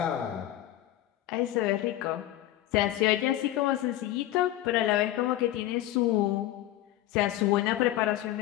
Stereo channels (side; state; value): right; quieter; 14.2 dB